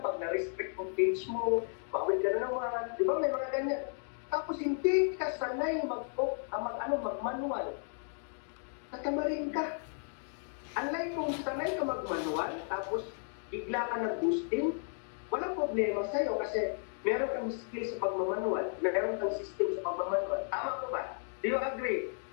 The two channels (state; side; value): silent; right; 55 dB below the other